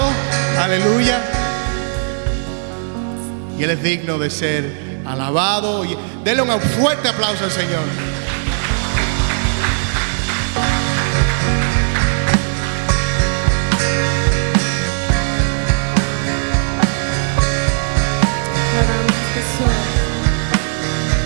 Aleluya. Y Él es digno de ser alabado. Denle un fuerte aplauso al Señor.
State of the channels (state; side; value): silent; left; 67 dB below the other